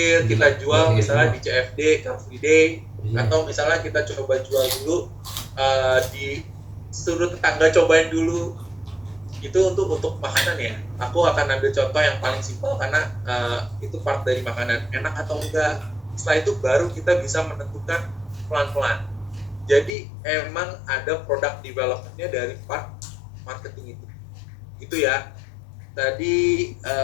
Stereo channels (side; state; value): right; drops out; at 19.9 s